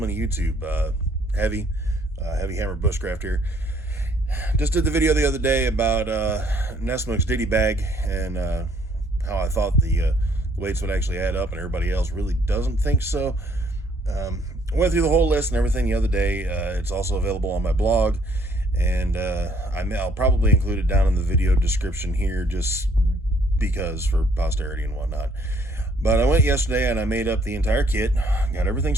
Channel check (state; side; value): normal; both; correlation 0.64